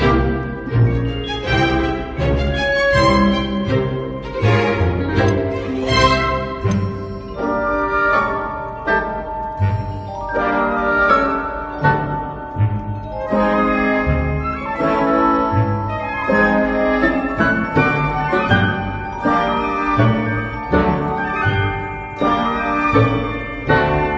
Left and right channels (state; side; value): identical; both; correlation 1.00